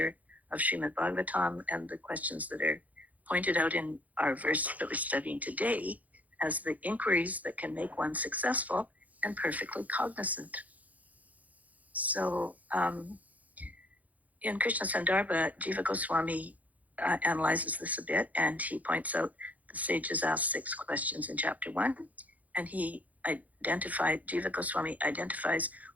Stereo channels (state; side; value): late; left; 0.076 ms